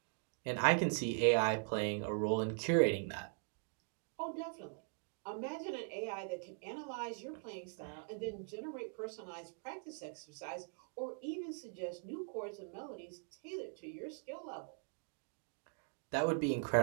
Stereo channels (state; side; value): silent; left; 50 dB below the other